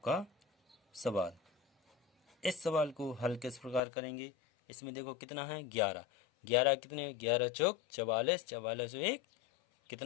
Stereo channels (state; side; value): drops out; right; at 3.8 s